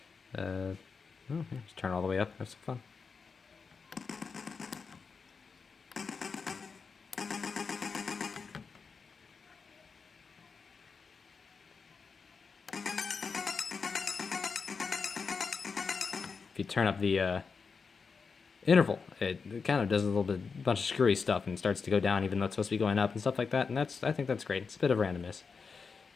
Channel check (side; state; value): right; quieter; 5.2 dB